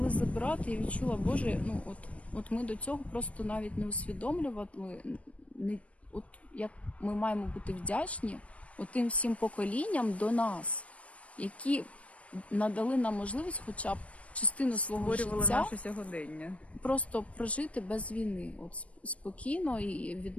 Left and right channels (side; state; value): right; late; 0.064 ms